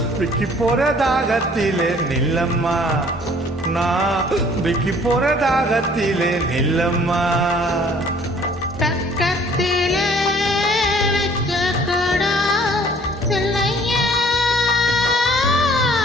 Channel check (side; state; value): both; normal; correlation 0.55